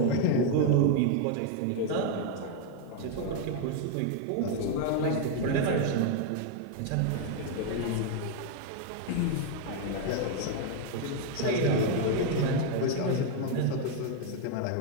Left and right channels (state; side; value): different; both; correlation 0.00